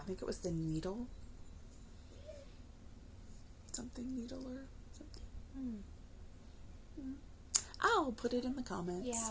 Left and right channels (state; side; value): identical; both; correlation 1.00